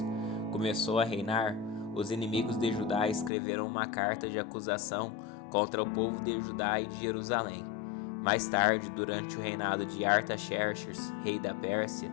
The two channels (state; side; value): drops out; right; at 3.3 s